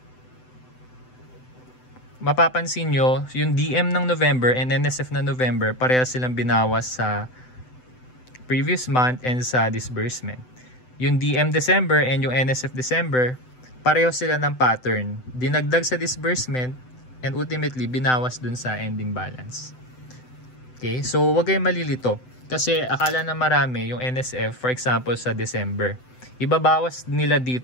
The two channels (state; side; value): late; right; 7.9 ms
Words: Mapapansin nyo, yung DM ng November and NSF na November, pareha silang binawas sa previous month and sa disbursement. Yung DM December and yung NSF December, pareho sila ng pattern. Dinagdag sa disbursement and ultimately binawas dun sa ending balance. Okay, so wag kayong malilito. Kasi akala na marami yung NSF, for example, sa December. ibabawas nila